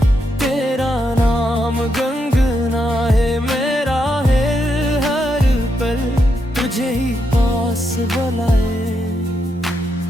तेरा नाम गुनगुनाए मेरा है हर पल तुझे ही पास बुलाए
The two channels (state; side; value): normal; both; correlation 0.81